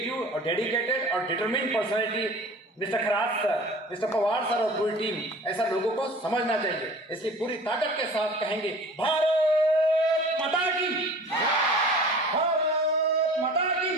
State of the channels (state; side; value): normal; both; correlation 0.42